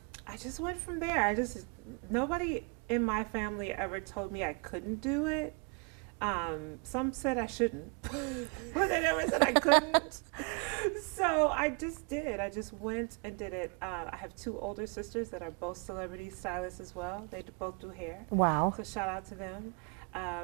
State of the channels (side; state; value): left; quieter; 33.4 dB